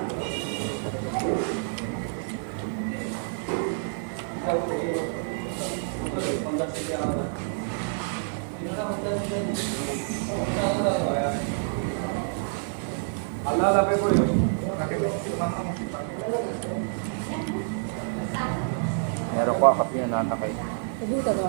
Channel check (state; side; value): silent; left; 58 dB below the other